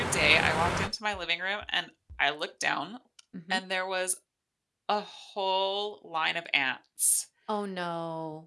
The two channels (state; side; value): identical; both; correlation 1.00